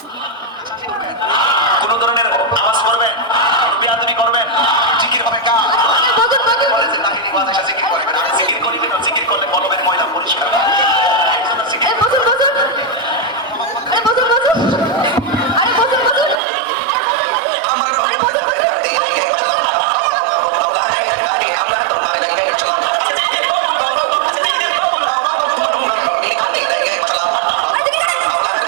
কোন ধরনের আওয়াজ করবেন, বেয়াদবি করবেন, জিকির হবে কাজ। বলেছে তাহিনী ওয়াজ এসে জিকির করবেন। আর জিকির করিবেন না, জিকির করলে বলবেন ময়লা পরিষ্কার। জিকির বসুন। আরে বসুন। আরে বসুন। আমার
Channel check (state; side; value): drops out; left; at 16.4 s